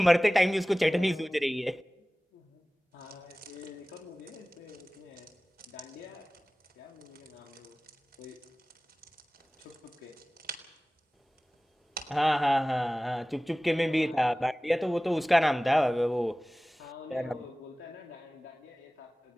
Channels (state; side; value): normal; both; correlation 0.98